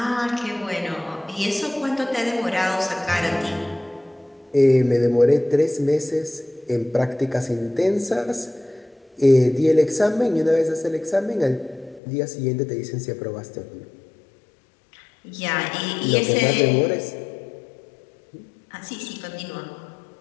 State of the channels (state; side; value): drops out; right; at 12.0 s